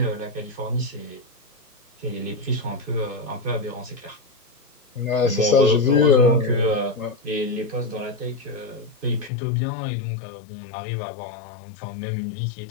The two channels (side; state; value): right; drops out; at 9.3 s